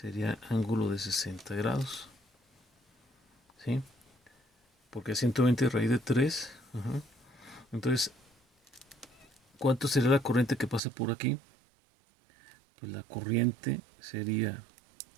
ángulo de 60 grados, ¿sí? Porque 120 raíz de 3, entonces, ¿cuánto sería la corriente que pasa por aquí? Pues la corriente sería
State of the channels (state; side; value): drops out; left; at 10.8 s